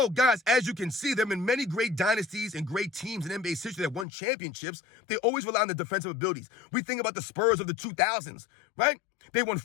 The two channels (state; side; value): drops out; right; at 4.0 s